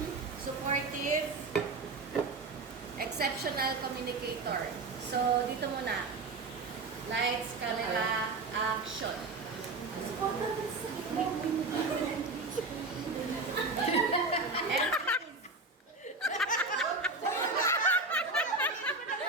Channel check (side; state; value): left; quieter; 3.6 dB